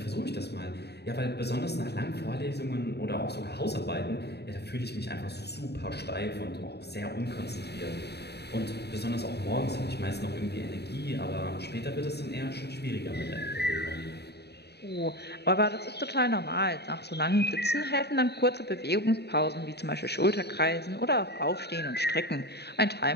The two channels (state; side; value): late; right; 0.48 ms